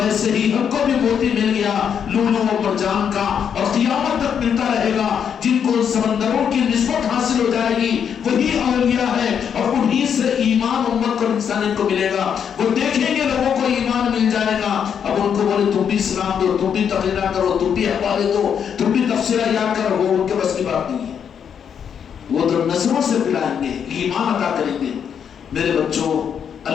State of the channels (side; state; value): right; quieter; 7.8 dB